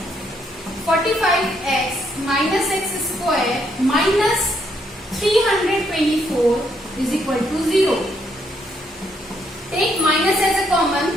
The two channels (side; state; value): both; normal; correlation 0.73